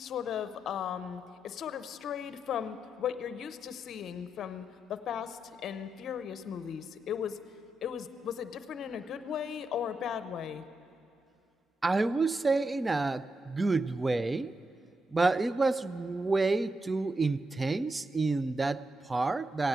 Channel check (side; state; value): both; normal; correlation 0.85